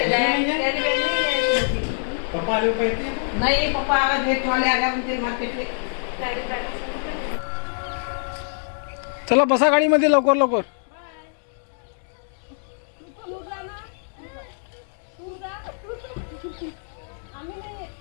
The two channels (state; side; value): silent; right; digital silence